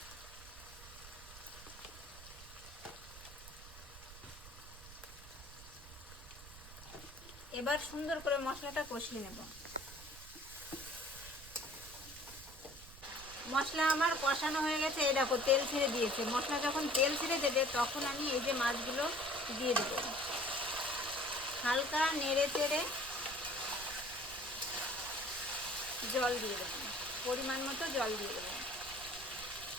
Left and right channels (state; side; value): noise; right; rumble, 16 dB below the sound